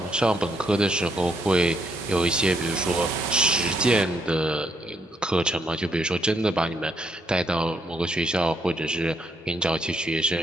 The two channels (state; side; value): normal; both; correlation 0.74